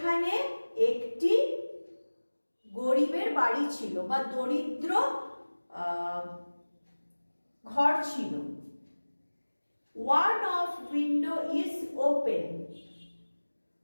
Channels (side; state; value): both; inverted; correlation -1.00